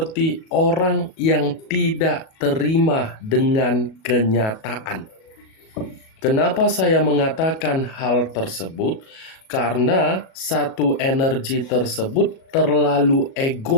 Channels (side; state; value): right; late; 37 ms